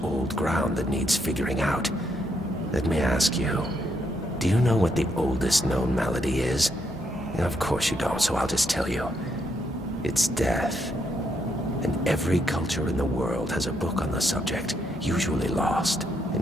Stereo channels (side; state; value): both; normal; correlation 0.76